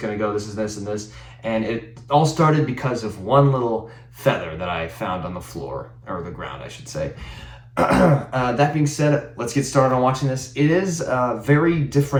to go? This is this and this. And it all started because of one little feather that I found on the floor, or the ground, I should say. That being said, let's get started on watching this. It is a very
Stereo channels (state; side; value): identical; both; correlation 1.00